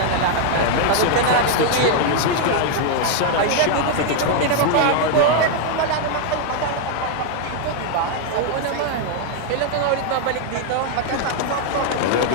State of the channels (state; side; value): different; both; correlation 0.00